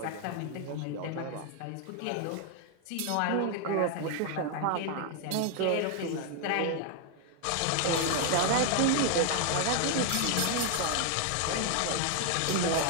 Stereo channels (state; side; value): different; both; correlation 0.00